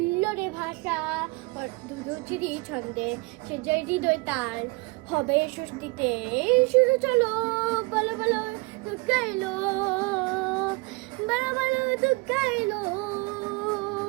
ভাষা দুরুচিরি ছন্দে সে জয় হৃদয় তার হবে সুস্থিতে শুরু চলো বলো বলো দুঃখ গাইলো বলো বলো দুঃখ গাইলো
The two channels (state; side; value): quieter; left; 26.6 dB